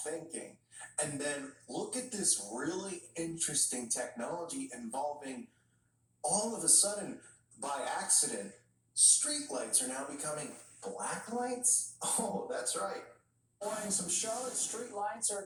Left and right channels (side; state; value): both; identical; correlation 1.00